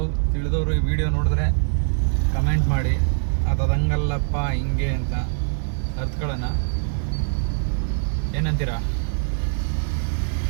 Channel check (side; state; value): left; silent; 63 dB below the other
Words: ತಿಳಿದವರು ಈ ವಿಡಿಯೋ ನೋಡಿದ್ರೆ ಕಮೆಂಟ್ ಮಾಡಿ, ಅದಂಗಲ್ಲಪ್ಪ ಹಿಂಗೆ ಅಂತ ಅರ್ಥಗಳನ್ನ. ಏನಂತೀರಾ?